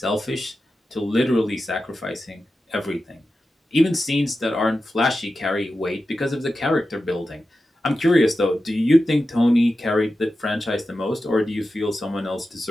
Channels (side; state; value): both; normal; correlation 0.92